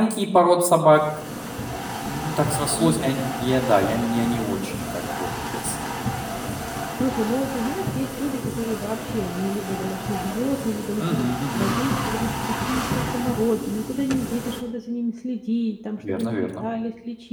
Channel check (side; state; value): both; identical; correlation 1.00